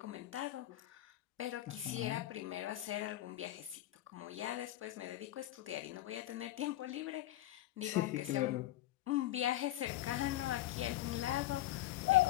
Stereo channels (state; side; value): quieter; right; 15.0 dB